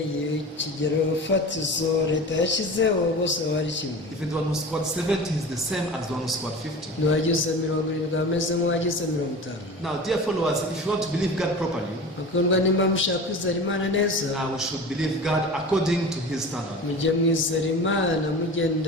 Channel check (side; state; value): both; normal; correlation 0.34